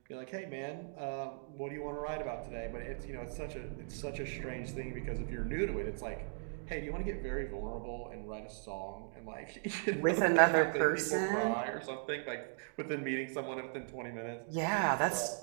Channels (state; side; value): silent; left; digital silence